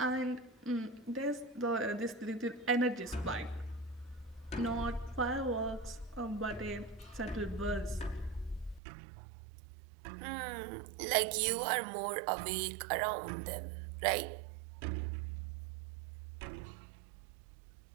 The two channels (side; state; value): left; drops out; at 8.8 s